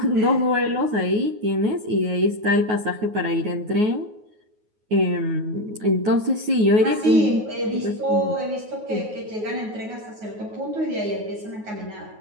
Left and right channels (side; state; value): left; late; 9.5 ms